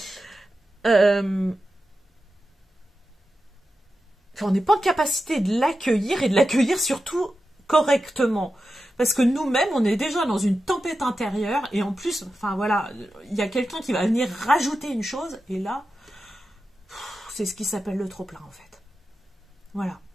Hein. On n'est pas en capacité de l'accueillir et de l'accueillir surtout correctement. Parce que nous-mêmes, on est déjà dans une tempête intérieure et en plus, enfin voilà, il y a quelqu'un qui va venir rajouter une chose et là, c'est ce qui s'appelle le trop-plein en fait. Voilà.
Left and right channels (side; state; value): both; normal; correlation 0.91